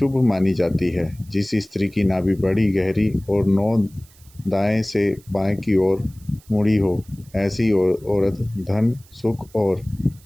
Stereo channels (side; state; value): right; noise; hiss, 27 dB below the sound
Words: मानी जाती है। जिस स्त्री की नाभि बड़ी गहरी और नोक दाएं से बाएं की ओर मुड़ी हो, ऐसी औरत धन, सुख और